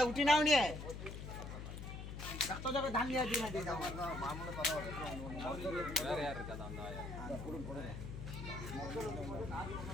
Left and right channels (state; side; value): noise; left; hum, 8 dB below the sound